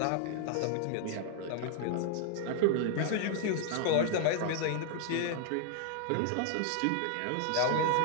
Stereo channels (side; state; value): both; different; correlation -0.01